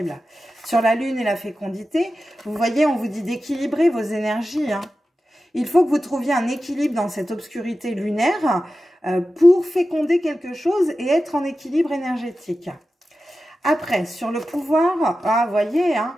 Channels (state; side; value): normal; both; correlation 0.93